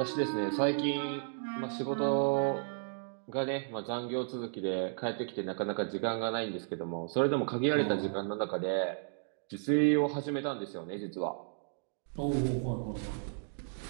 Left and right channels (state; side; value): silent; left; digital silence